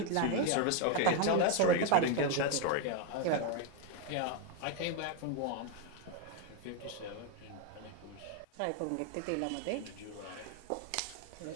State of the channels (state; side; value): different; both; correlation 0.01